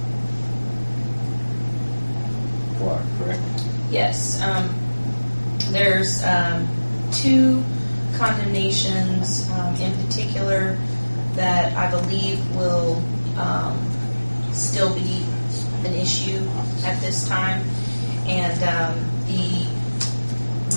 acquired, correct? Yes. There's 2 condemnations in particular that I believe will still be an issue at this time, and the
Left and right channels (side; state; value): both; inverted; correlation -1.00